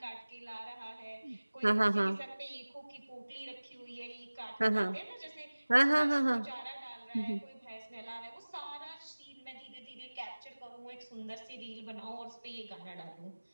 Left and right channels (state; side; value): inverted; both; correlation -1.00